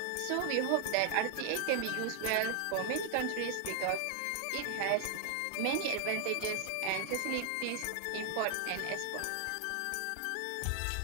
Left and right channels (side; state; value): both; different; correlation 0.00